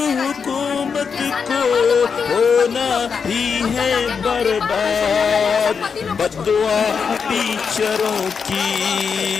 को होना ही है बर्बाद। बद्दुआ टीचरों की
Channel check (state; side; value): quieter; right; 6.0 dB